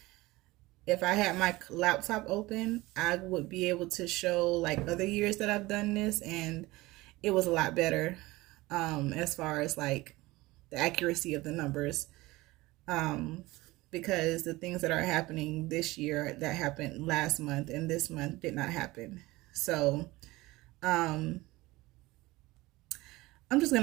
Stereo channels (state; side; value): quieter; left; 20.2 dB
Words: if I had my laptop open, I would be able to show like other years that I've done this, and it was a lot better, as far as like the accuracy of the numbers, because the things that are happening this year that happened last month and this month did not happen. So I'm just